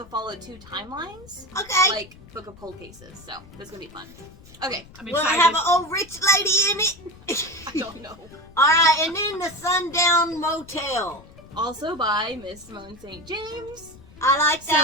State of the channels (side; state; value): left; noise; rumble, 21 dB below the sound